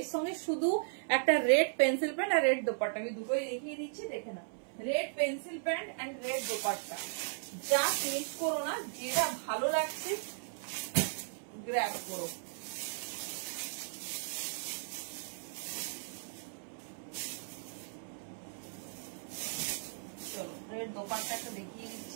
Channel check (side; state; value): left; silent; 54 dB below the other